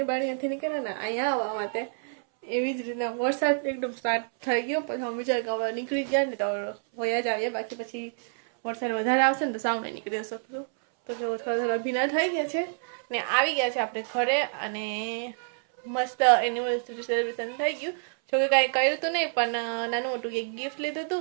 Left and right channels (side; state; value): left; silent; 59 dB below the other